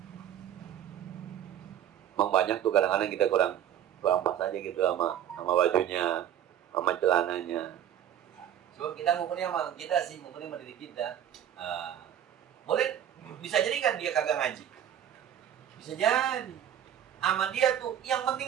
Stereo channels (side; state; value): left; quieter; 10.2 dB